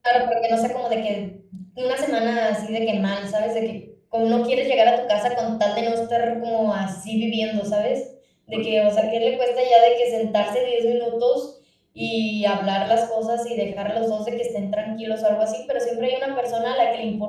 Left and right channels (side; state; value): both; identical; correlation 1.00